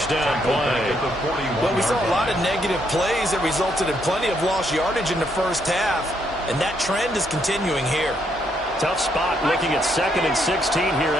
down play. Well, we saw a lot of negative plays that resulted in plenty of lost yardage in the first half, and that trend is continuing here. Tough spot looking at 2nd and 16 here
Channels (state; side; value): normal; both; correlation 0.74